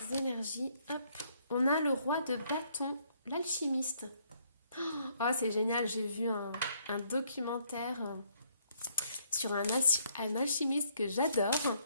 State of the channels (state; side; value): inverted; both; correlation -0.68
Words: énergies? Hop. On a le roi de bâton, l'alchimiste. Oh, c'est génial, j'ai vu un documentaire sur un alchimiste que j'adore.